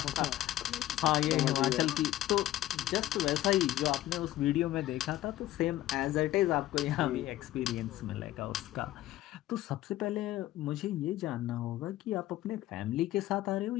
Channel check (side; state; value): right; quieter; 14.6 dB